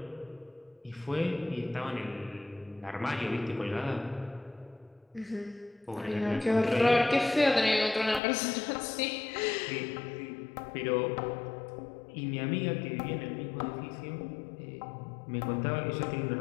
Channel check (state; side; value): drops out; right; at 8.2 s